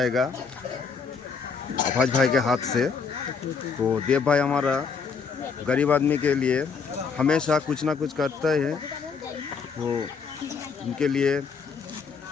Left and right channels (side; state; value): right; quieter; 5.5 dB